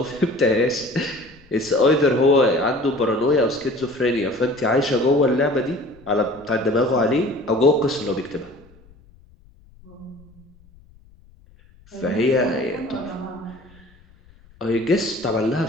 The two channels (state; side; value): noise; left; rumble, 27 dB below the sound